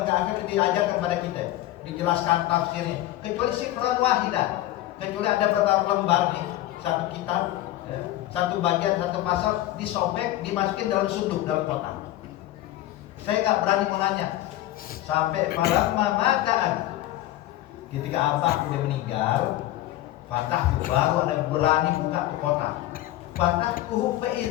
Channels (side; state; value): right; quieter; 14.9 dB